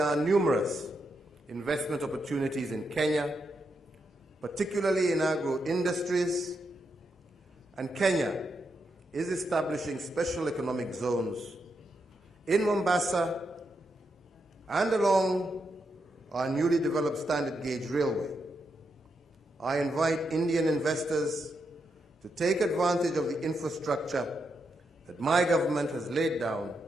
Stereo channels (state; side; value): normal; both; correlation 0.83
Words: are numerous investment opportunities in Kenya, particularly in agro-industries, and Kenya is establishing special economic zones in Mombasa and along our newly developed standard gauge railway. I invite Indian investors to take advantage of the infrastructure that my government has laid down,